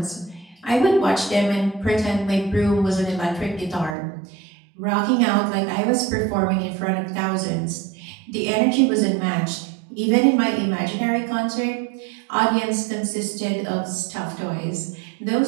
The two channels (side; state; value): left; drops out; at 4.0 s